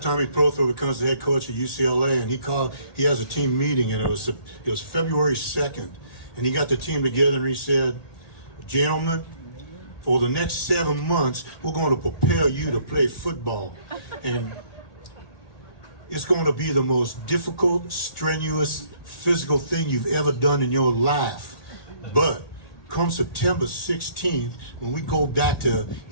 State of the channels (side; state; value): right; late; 1.8 ms